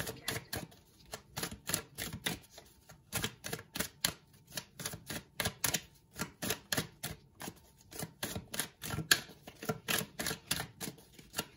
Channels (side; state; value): both; identical; correlation 1.00